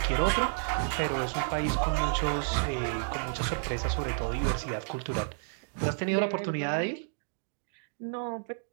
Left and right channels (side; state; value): left; silent; digital silence